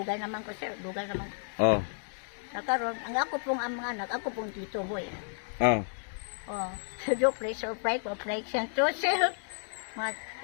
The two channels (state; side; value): silent; right; digital silence